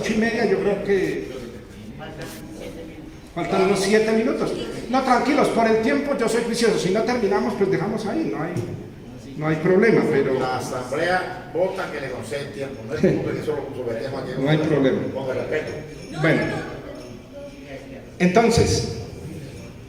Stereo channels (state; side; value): identical; both; correlation 1.00